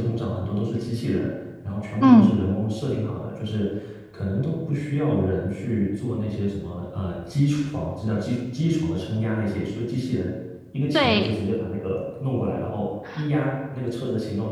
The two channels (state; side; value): identical; both; correlation 1.00